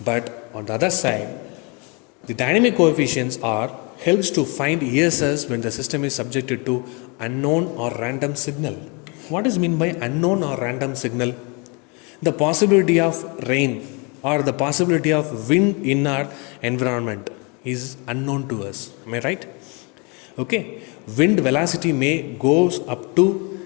But on the other side, the dynamic coefficients are helps to find ESS when the system is subjected to unknown or random signal. What is meant by unknown or random signal? The possibility of rain or the possibility of wind in our environment is unknown to us. Am I right? Okay. Wind velocity may goes up to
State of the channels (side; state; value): right; quieter; 31.5 dB